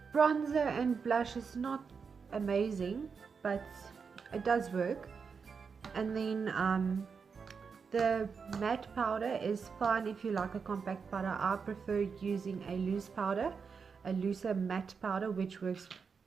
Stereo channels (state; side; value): quieter; left; 5.7 dB